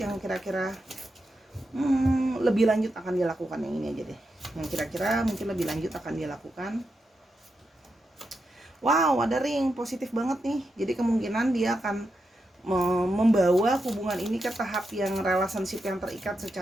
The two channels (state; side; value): normal; both; correlation 0.86